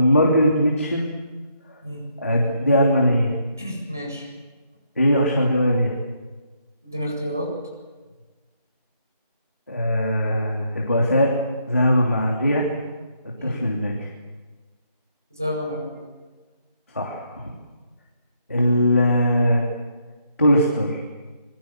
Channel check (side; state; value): both; inverted; correlation -0.74